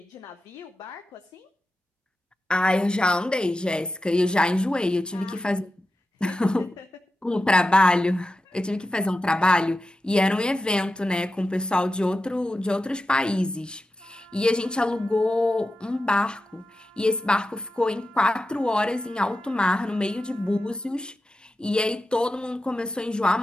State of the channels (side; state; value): both; normal; correlation 0.91